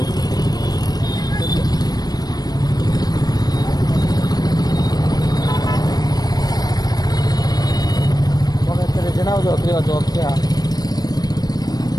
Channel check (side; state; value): right; late; 0.19 ms